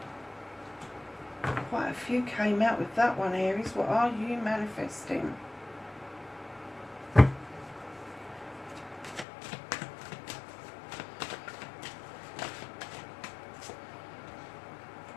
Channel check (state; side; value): drops out; right; at 9.2 s